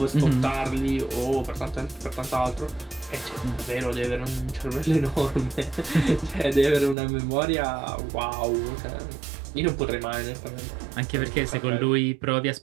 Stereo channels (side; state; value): left; drops out; at 7.0 s